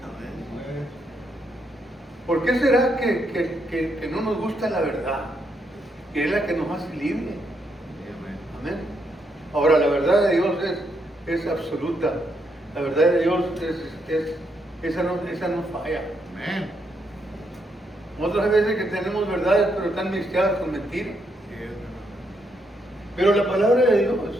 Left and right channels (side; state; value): both; normal; correlation 0.77